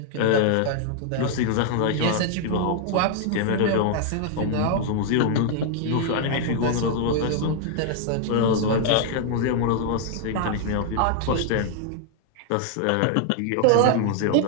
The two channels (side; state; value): both; different; correlation 0.00